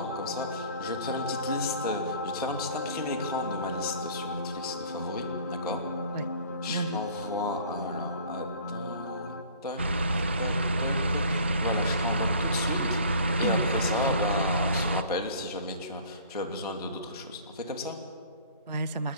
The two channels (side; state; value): both; inverted; correlation -0.49